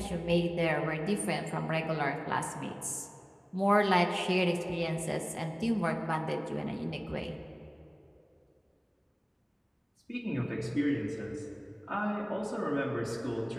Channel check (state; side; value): identical; both; correlation 1.00